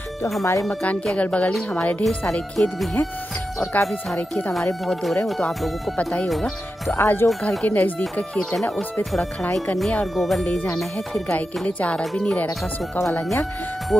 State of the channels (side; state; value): both; normal; correlation 0.90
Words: तो हमारे मकान के अगल बगल ही हमारे ढेर सारे खेत भी हैं और काफ़ी सारे खेत हमारे बहुत दूर है, वो तो आप लोगों को पता ही होगा। तो आज जो घर के नज़दीक का खेत है ना, उस पर थोड़ा खड़ाई करनी है और गोबर ले जाना है। फिर गाय के लिए चारा भी नहीं रह रखा, सूखा वाला यहाँ